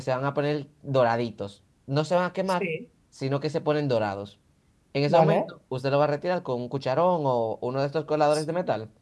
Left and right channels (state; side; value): identical; both; correlation 1.00